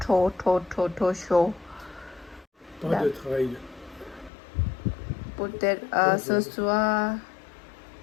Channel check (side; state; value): right; drops out; at 4.3 s